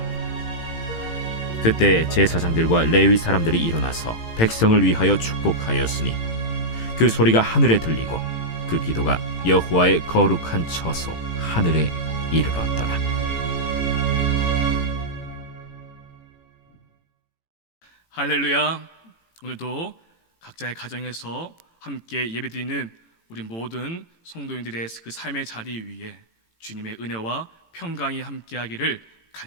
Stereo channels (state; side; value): late; right; 18 ms